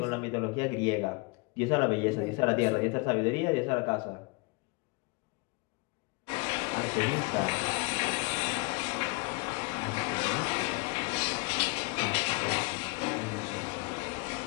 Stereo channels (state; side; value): quieter; right; 29.3 dB